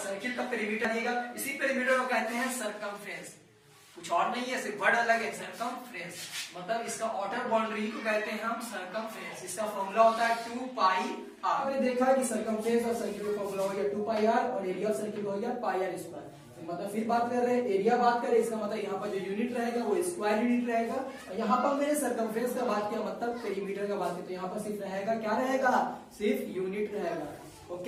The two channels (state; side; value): identical; both; correlation 1.00